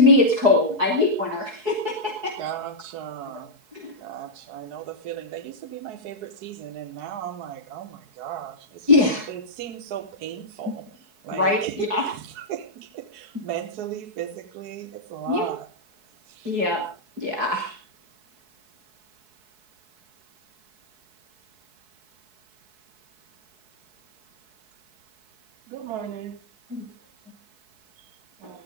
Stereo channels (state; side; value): late; left; 4.7 ms